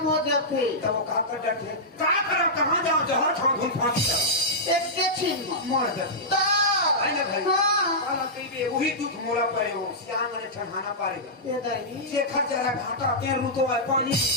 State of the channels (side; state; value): both; normal; correlation -0.12